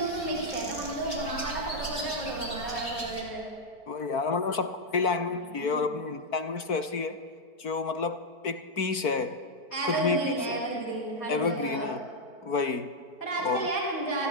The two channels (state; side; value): late; right; 4.5 ms